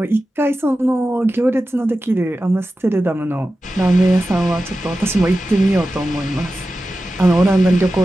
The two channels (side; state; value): both; normal; correlation 0.93